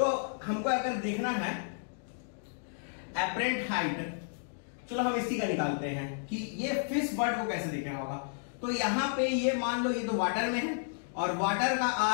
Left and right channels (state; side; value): silent; right; digital silence